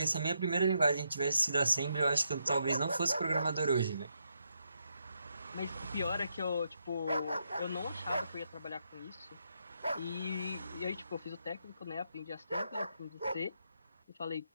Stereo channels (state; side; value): inverted; both; correlation -0.80